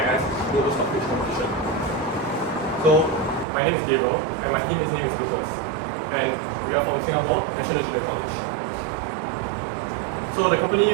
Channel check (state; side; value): drops out; left; at 3.5 s